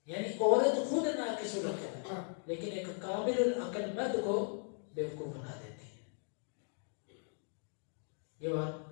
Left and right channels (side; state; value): right; silent; 53 dB below the other